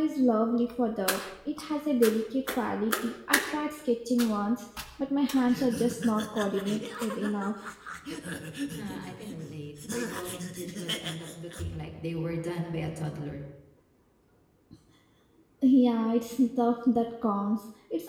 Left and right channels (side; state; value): both; identical; correlation 1.00